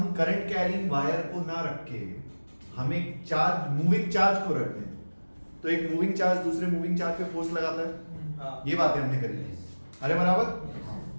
करंट कैरिंग वायर को ना रख के हम एक चार्ज, मूविंग चार्ज को रखते हैं, तो एक मूविंग चार्ज दूसरे मूविंग चार्ज पे फोर्स लगाता है। ये बातें हमने करी थी। अरे बराबर।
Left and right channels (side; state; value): both; inverted; correlation -1.00